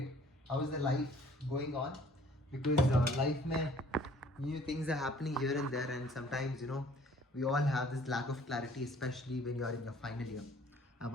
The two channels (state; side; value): normal; both; correlation 0.56